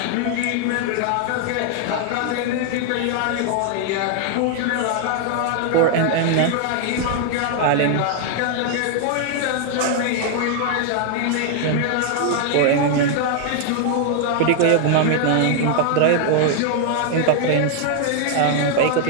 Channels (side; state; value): both; different; correlation 0.00